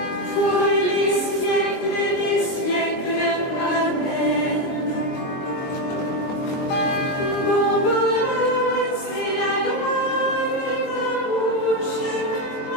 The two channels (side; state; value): right; late; 23 ms